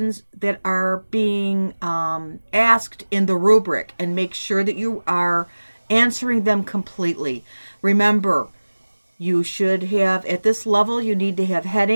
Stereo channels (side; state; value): both; inverted; correlation -1.00